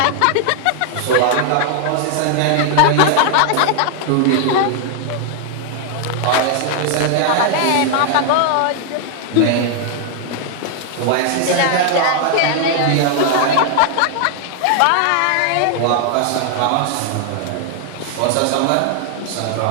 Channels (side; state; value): both; different; correlation 0.00